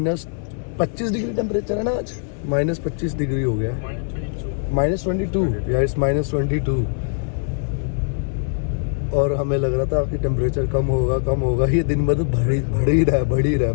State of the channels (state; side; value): silent; right; digital silence